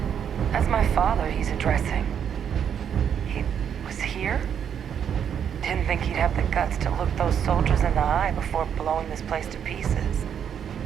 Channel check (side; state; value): left; quieter; 8.3 dB